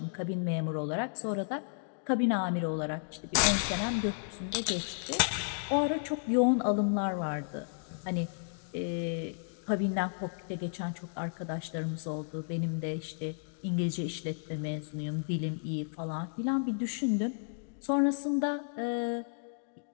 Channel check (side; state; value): right; silent; digital silence